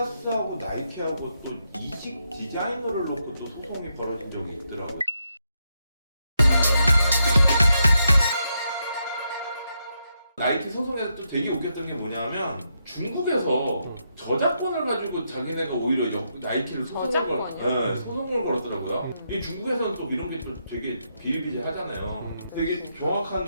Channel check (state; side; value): inverted; both; correlation -0.81